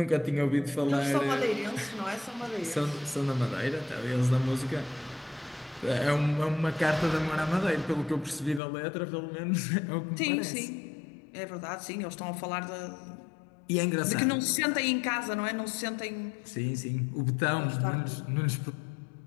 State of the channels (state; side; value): drops out; right; at 8.6 s